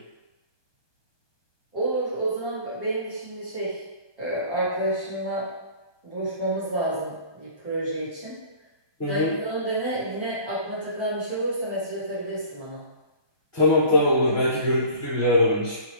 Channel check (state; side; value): late; right; 1.2 ms